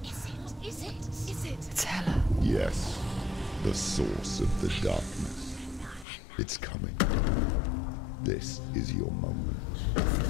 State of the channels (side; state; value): right; drops out; at 6.1 s